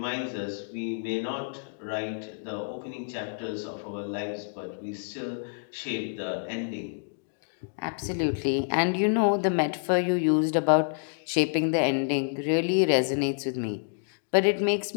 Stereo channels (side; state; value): right; silent; digital silence